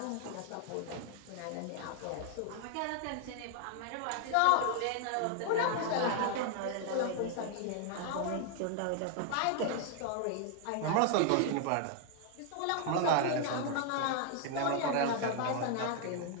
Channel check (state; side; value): different; both; correlation 0.00